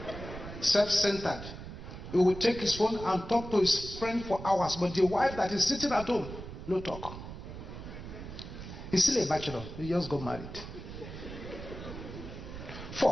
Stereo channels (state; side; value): noise; right; rumble, 11 dB below the sound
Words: self-centered. He will take his phone and talk to his friend for hours, but the wife that is sitting at home, no talk. He's still a bachelor. He just got married.